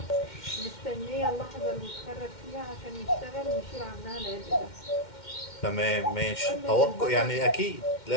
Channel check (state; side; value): late; right; 2.1 ms